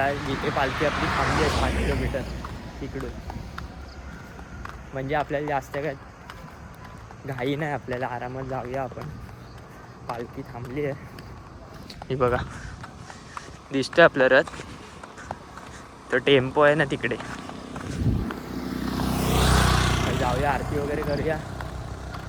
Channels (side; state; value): both; identical; correlation 1.00